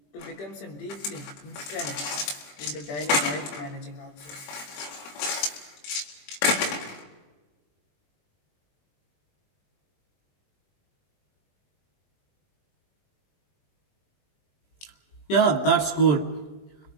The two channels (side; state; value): right; late; 21 ms